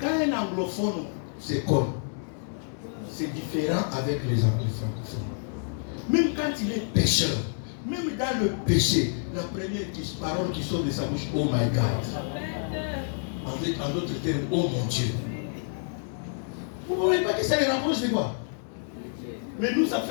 un anglophone se connaît, c'est différent avec les francophones. Même quand il est pécheur, même dans le péché, la première parole qui sort de sa bouche, oh my God. En d'autres termes, oh mon Dieu. Vous ne voyez pas que ça les rapproche de quoi? Mais nous, ça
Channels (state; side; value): silent; right; digital silence